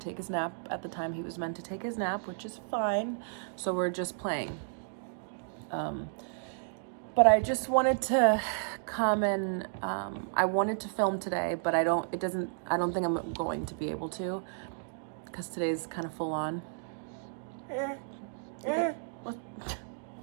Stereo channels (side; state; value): left; silent; digital silence